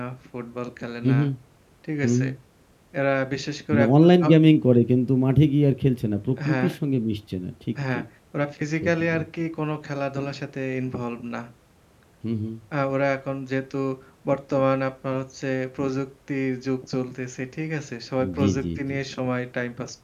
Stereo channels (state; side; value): identical; both; correlation 1.00